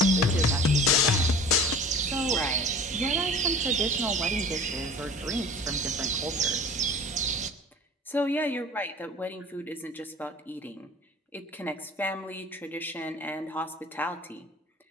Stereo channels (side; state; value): both; normal; correlation 0.42